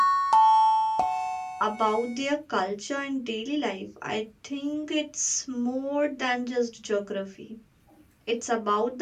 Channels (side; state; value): both; identical; correlation 1.00